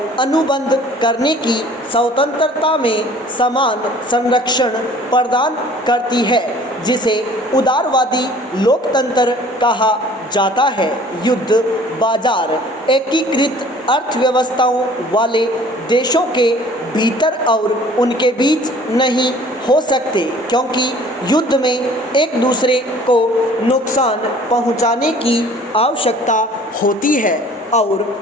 अनुबंध करने की स्वतंत्रता में समान संरक्षण प्रदान करती है, जिसे उदारवादी लोकतंत्र कहा जाता है। युद्ध बाजार एकीकृत अर्थव्यवस्थाओं वाले देशों के भीतर और उनके बीच नहीं हो सकते, क्योंकि युद्ध में एक दूसरे को नुकसान पहुंचाने की आवश्यकता होती है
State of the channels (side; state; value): both; normal; correlation 0.51